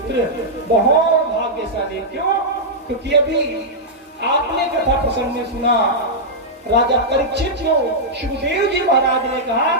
बहुत भाग्यशाली। क्यों? क्योंकि अभी आपने कथा प्रसंग में सुना राजा परीक्षित को सुखदेव जी महाराज ने कहा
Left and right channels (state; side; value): normal; both; correlation -0.08